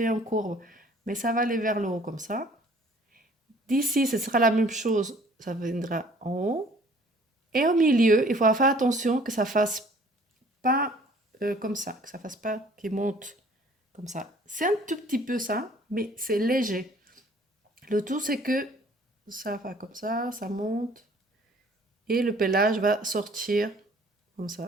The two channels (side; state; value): both; normal; correlation 0.55